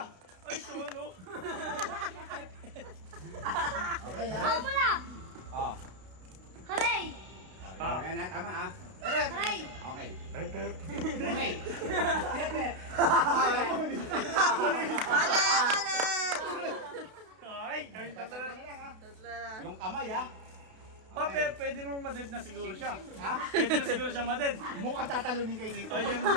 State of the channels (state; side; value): late; left; 32 ms